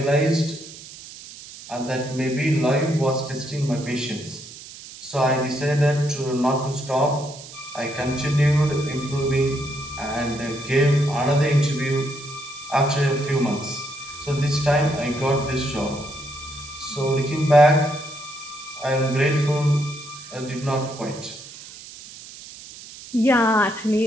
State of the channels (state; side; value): noise; right; hiss, 16 dB below the sound